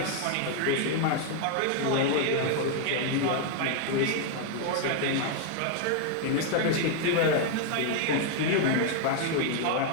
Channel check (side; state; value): both; different; correlation 0.00